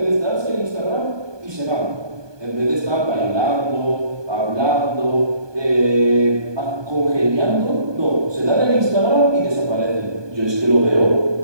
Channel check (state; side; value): late; left; 1.2 ms